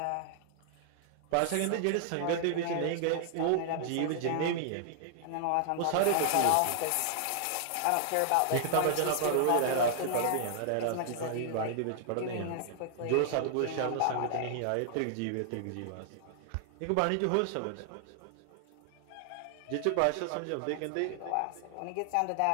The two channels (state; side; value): different; both; correlation -0.01